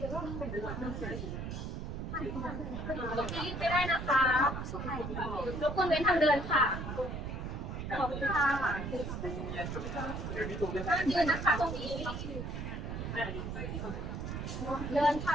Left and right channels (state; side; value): noise; right; rumble, 5 dB below the sound